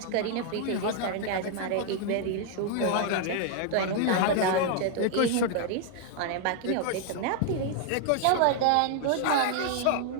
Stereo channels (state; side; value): different; both; correlation 0.00